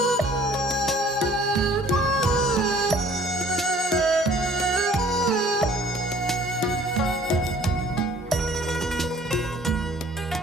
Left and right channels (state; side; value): normal; both; correlation 0.55